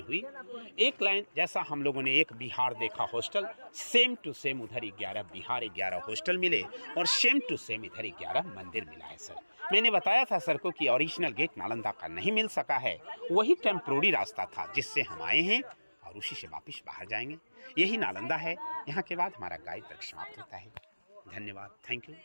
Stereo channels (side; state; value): both; inverted; correlation -1.00